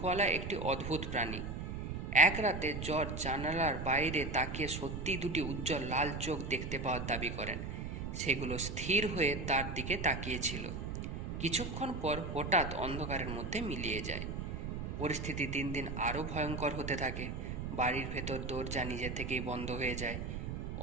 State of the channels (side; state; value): right; noise; rumble, 5 dB below the sound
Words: একটি অদ্ভুত প্রাণী। এক রাতে জর্জ জানালার বাইরে তাকিয়ে সত্যি দুটি উজ্জ্বল লাল চোখ দেখতে পাওয়ার দাবি করেন। সেগুলো স্থির হয়ে তার দিকে তাকিয়েছিল। কিছুক্ষণ পর হঠাৎ অন্ধকারের মধ্যে মিলিয়ে যায়। পরিস্থিতি দিন দিন আরও ভয়ঙ্কর হতে থাকে। বাড়ির ভেতর দরজা নিজে থেকেই বন্ধ হয়ে যায়।